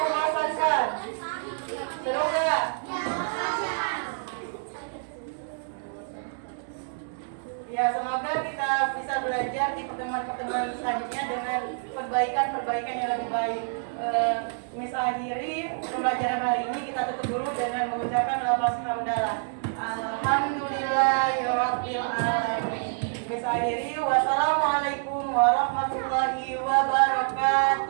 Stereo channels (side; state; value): left; silent; 60 dB below the other